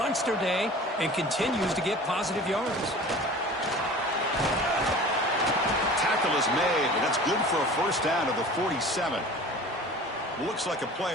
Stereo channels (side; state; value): both; normal; correlation 0.41